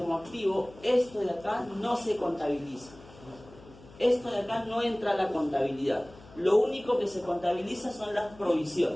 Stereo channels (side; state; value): left; noise; hum, 22 dB below the sound